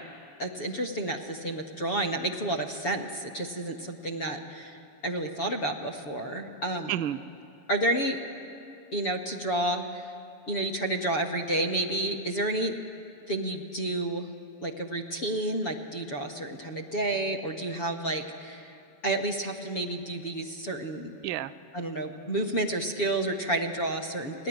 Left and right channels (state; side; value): late; right; 7.1 ms